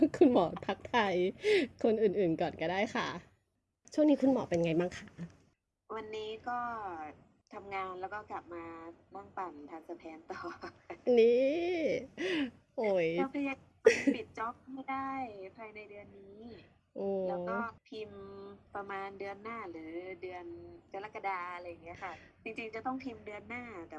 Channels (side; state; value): both; identical; correlation 1.00